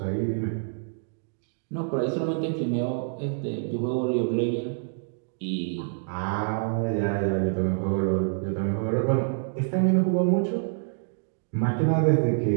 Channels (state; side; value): silent; left; digital silence